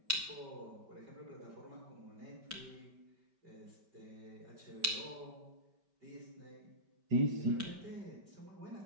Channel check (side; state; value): left; late; 5.1 ms